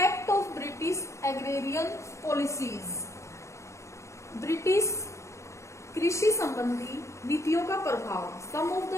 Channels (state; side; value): late; right; 0.14 ms